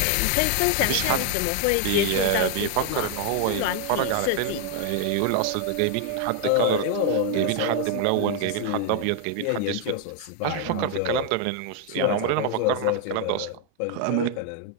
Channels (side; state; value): both; different; correlation 0.00